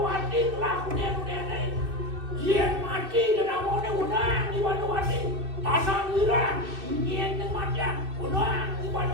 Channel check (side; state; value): left; late; 2.6 ms